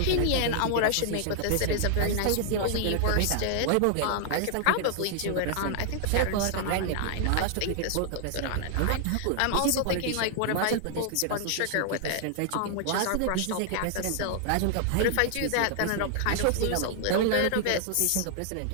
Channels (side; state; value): both; different; correlation -0.01